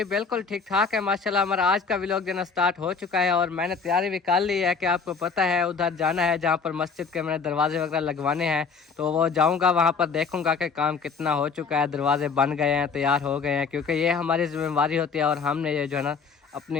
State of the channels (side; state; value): right; quieter; 5.3 dB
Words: बिल्कुल ठीक ठाक है माशाल्लाह। हमारा आज का व्लॉग देना स्टार्ट हो चुका है और मैंने तैयारी भी कर ली है कि आपको पता है उधर जाना है जहाँ पर मस्जिद के मैंने दरवाजे वगैरह लगवाने हैं। तो वो जाऊँगा, वहाँ पर देखूँगा कि काम कितना हो चुका है, दरवाजे बन गए हैं, तैयार हो गए हैं, क्योंकि ये हमारी जिम्मेवारी होती है और हमने ये जो है ना अपनी